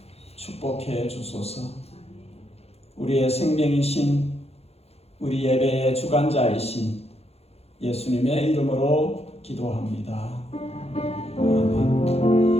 축복해 주소서. 우리의 생명이신 우리 예배의 주관자이신 예수님의 이름으로 기도합니다. 아멘.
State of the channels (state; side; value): late; right; 0.30 ms